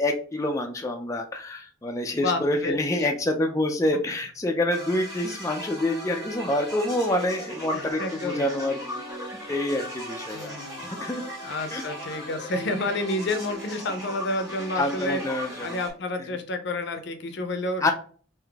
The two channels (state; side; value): normal; both; correlation 0.39